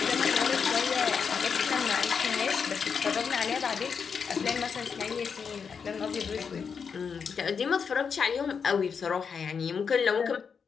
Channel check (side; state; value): right; quieter; 6.2 dB